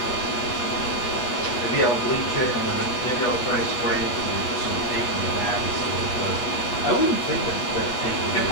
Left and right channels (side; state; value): right; late; 8.0 ms